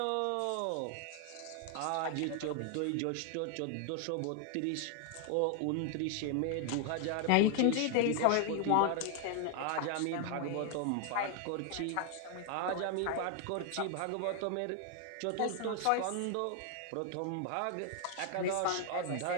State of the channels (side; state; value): both; different; correlation 0.00